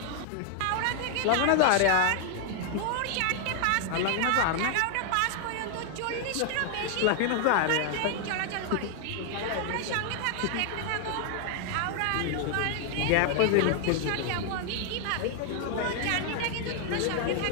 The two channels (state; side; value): different; both; correlation 0.00